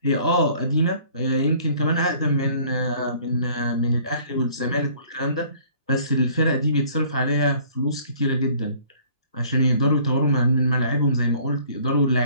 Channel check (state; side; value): inverted; both; correlation -0.55